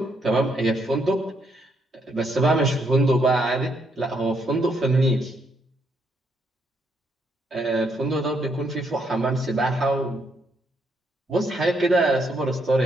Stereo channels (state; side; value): normal; both; correlation 0.74